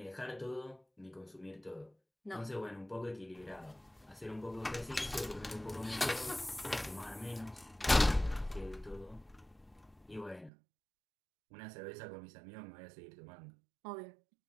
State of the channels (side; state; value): left; drops out; at 10.5 s